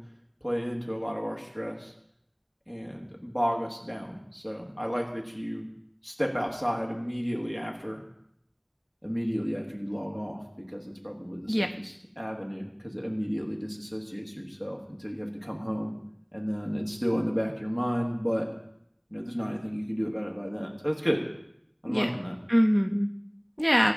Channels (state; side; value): identical; both; correlation 1.00